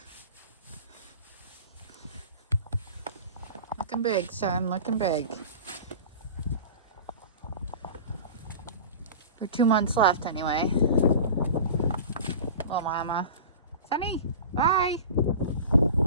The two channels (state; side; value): inverted; both; correlation -0.36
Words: Looking big, son. Looking big. For 2 months left anyway. Little mama. Sunny, bye.